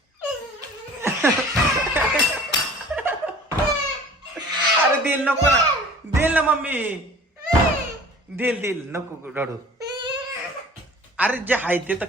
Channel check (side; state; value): both; normal; correlation 0.46